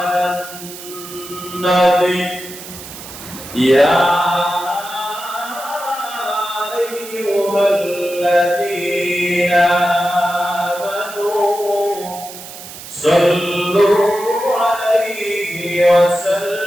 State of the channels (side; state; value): right; noise; hiss, 14 dB below the sound